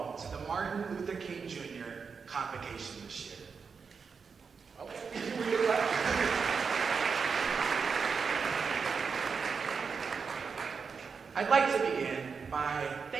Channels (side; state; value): left; quieter; 5.5 dB